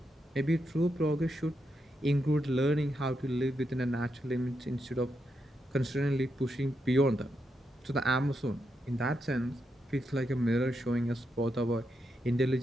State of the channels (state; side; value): normal; both; correlation 0.83